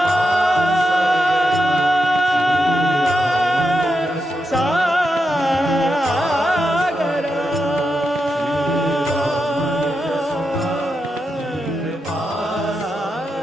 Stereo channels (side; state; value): both; normal; correlation 0.86